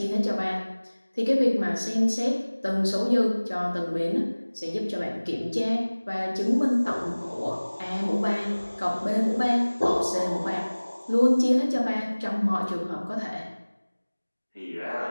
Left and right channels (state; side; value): inverted; both; correlation -1.00